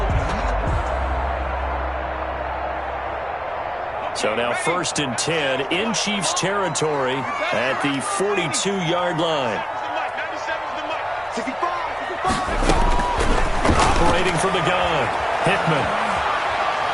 So now 1st and 10 in Chiefs territory at the 42-yard line. Operating from the gun, Hickman.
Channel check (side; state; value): both; identical; correlation 1.00